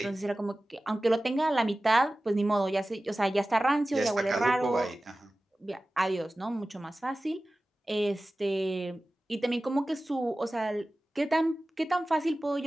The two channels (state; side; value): normal; both; correlation 0.96